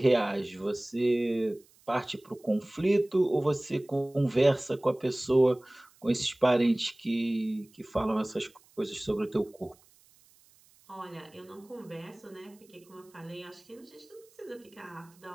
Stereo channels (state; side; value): noise; right; hiss, 29 dB below the sound